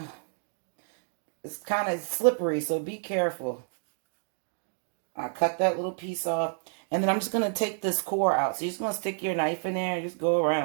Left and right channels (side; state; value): left; silent; digital silence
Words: It's kind of slippery, so be careful. I cut that little piece off. And then I'm just going to take this core out. So you're just going to stick your knife in there and just go